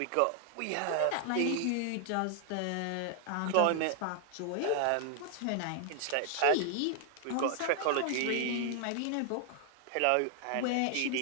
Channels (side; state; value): both; different; correlation 0.00